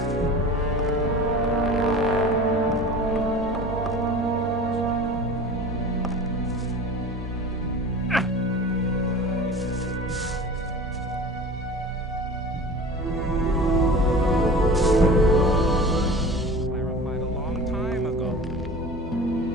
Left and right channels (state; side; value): normal; both; correlation 0.37